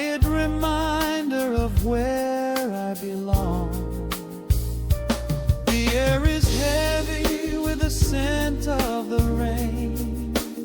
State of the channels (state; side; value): identical; both; correlation 1.00